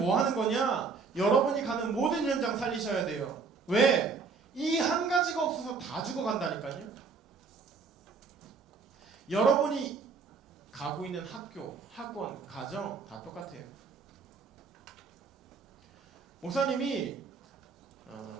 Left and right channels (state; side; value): quieter; left; 4.9 dB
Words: 하는 거냐? 여러분이 가는 모든 현장 살리셔야 돼요. 왜? 이 한 가지가 없어서 다 죽어간다니까요. 여러분이 가고 있는 학교, 학원, 가정 다 똑같아요. 목사님이